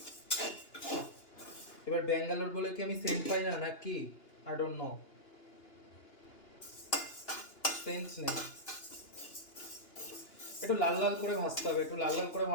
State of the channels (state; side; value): late; right; 2.8 ms